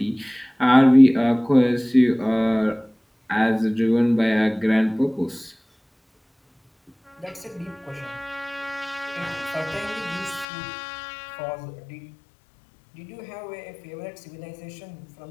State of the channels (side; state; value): right; drops out; at 10.5 s